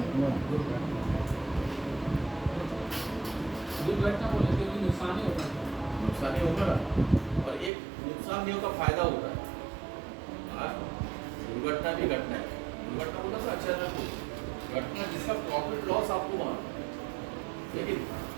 दुर्घटना बोले क्योंकि नुकसान ही होता है। नुकसान ही होगा ना, और एक नुकसान नहीं होता, फायदा होता है। दुर्घटना भी घटना है, दुर्घटना बोला था अच्छा ना, घटना जिसका प्रॉफिट लॉस आपको वहाँ, लेकिन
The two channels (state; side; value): drops out; left; at 7.7 s